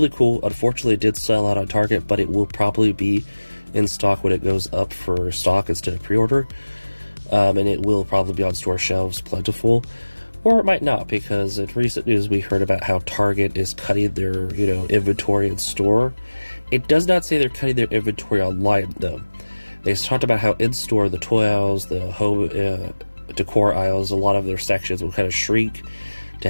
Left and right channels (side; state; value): both; inverted; correlation -1.00